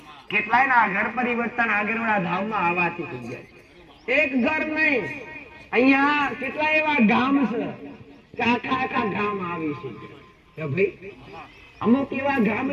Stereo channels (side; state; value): both; identical; correlation 1.00